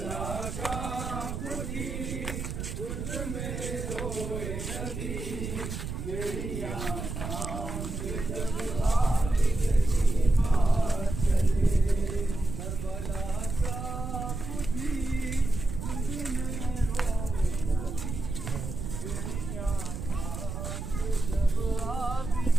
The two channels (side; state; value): right; noise; rumble, 5 dB below the sound